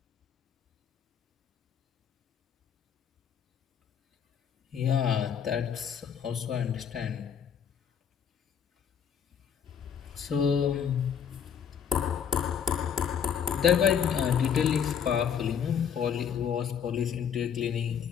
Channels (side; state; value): right; quieter; 7.9 dB